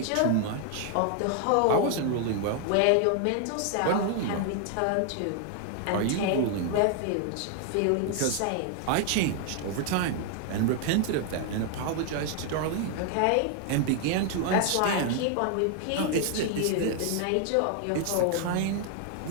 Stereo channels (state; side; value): different; both; correlation 0.00